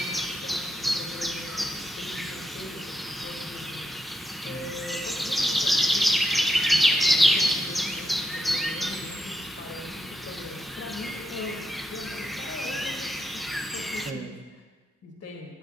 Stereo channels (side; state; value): both; normal; correlation 0.83